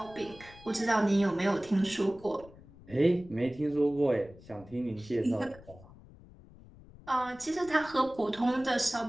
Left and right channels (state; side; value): noise; left; rumble, 21 dB below the sound